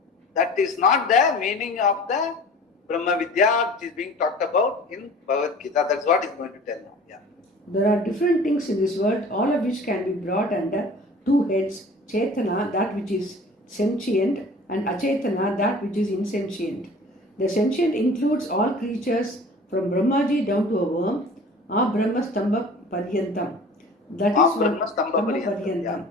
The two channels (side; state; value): both; normal; correlation 0.44